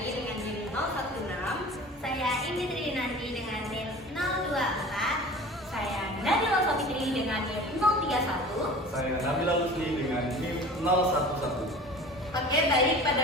dengan NIM 016, saya Indi Trinanti dengan NIM 024, saya Nabila Sofitri dengan NIM 031, saya Nabila Lusli dengan NIM 011. Oke, baik. Pada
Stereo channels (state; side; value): normal; both; correlation 0.40